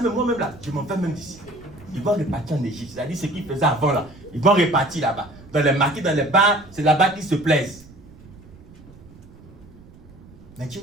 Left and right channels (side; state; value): right; noise; rumble, 22 dB below the sound